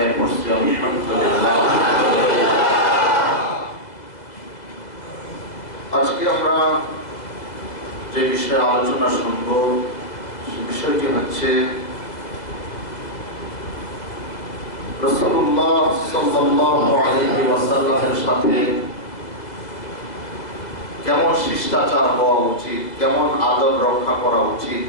করছি, আলহামদুলিল্লাহ। আজকে আমরা যে বিষয়ে আলোচনা শুনব সে বিষয়টি হচ্ছে রাসূলুল্লাহ সাল্লাল্লাহু আলাইহি ওয়াসাল্লামের সাথে কেমন শিষ্টাচার হওয়া উচিত, কেমন আদব রক্ষা করা উচিত।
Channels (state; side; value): late; right; 2.0 ms